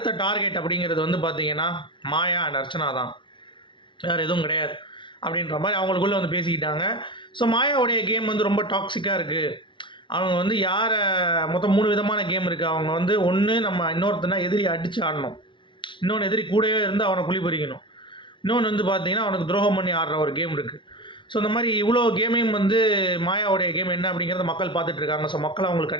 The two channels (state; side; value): late; right; 0.24 ms